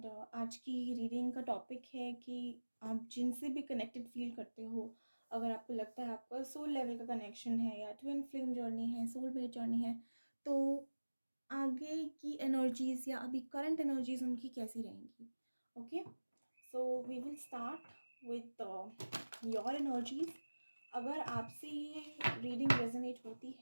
आज की reading का टॉपिक है कि आप जिनसे भी कनेक्टेड फील करते हो, अगर आपको लगता है आपका सोल लेवल का कनेक्शन है या ट्विन फ्लेम जर्नी है, सोलमेट जर्नी है, तो आगे की एनर्जीज या अभी करंट एनर्जीज उनकी कैसी रहेंगी. Okay, so we will start with your energies. अगर आपसे ये रीडिंग रेजोनेट होती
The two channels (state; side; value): inverted; both; correlation -1.00